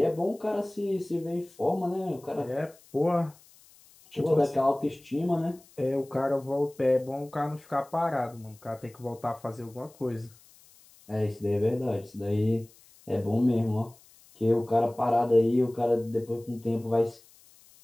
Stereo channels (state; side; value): noise; left; hiss, 27 dB below the sound